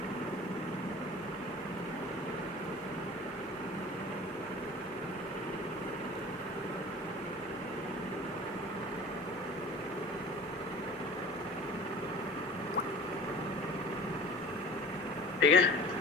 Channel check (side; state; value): both; normal; correlation 0.41